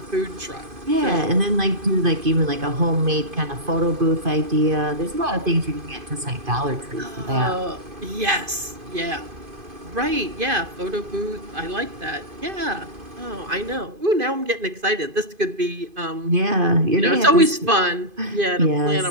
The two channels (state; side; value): late; left; 2.5 ms